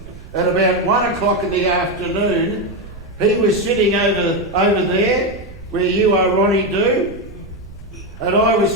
at about 1 o'clock in the afternoon. He was sitting over there, where you are, Ronnie Do, and I was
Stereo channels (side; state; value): right; noise; rumble, 17 dB below the sound